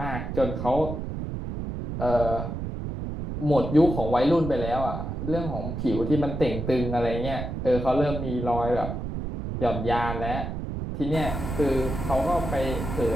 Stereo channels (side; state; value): right; noise; rumble, 5 dB below the sound